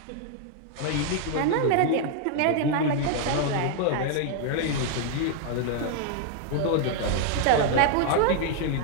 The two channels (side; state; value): both; different; correlation 0.00